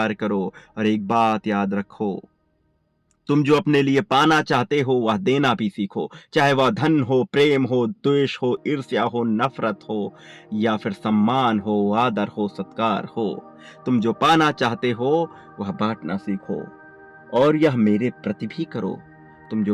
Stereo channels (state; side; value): identical; both; correlation 1.00